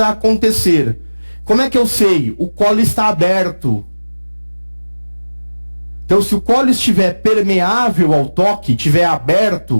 acontecer. Como é que eu sei? O colo está aberto. Então, se o colo estiver permeável ao toque, estiver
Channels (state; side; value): inverted; both; correlation -1.00